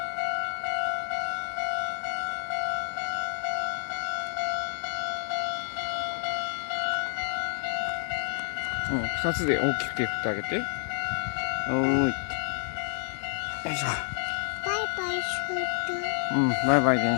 うん、二つで大きく手振ってあげて。おーい。よいしょ。バイバイする。うん、バイバイ電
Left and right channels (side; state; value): right; silent; digital silence